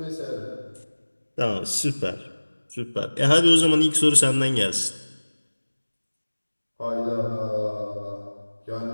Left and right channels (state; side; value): inverted; both; correlation -1.00